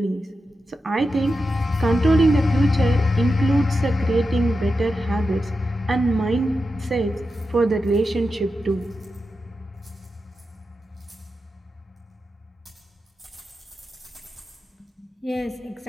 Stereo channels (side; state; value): both; normal; correlation 0.90